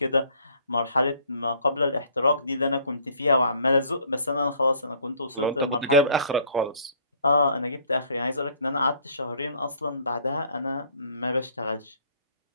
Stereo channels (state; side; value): inverted; both; correlation -0.58